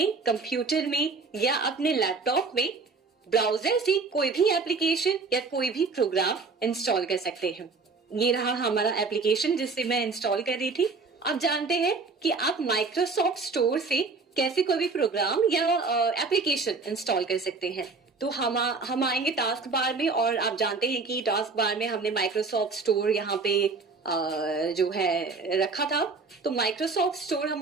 कंप्यूटर में या अपने लैपटॉप में ब्राउजर से कोई भी एप्लीकेशन या कोई भी प्रोग्राम इंस्टॉल कर सकते हैं। ये रहा हमारा एप्लीकेशन जिससे मैं इंस्टॉल कर रही थी। अब जानते हैं कि आप माइक्रोसॉफ्ट स्टोर से कैसे कोई भी प्रोग्राम या एप्लीकेशन इंस्टॉल कर सकते हैं। तो हम आएंगे टास्क बार में और आप जानते हैं कि टास्क बार में हमने माइक्रोसॉफ्ट स्टोर यहाँ पे जो है रखा था। तो माइक्रोसॉफ्ट स्टोर हम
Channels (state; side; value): quieter; left; 4.2 dB